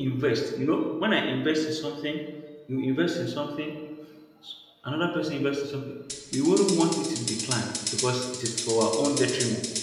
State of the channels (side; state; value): both; identical; correlation 1.00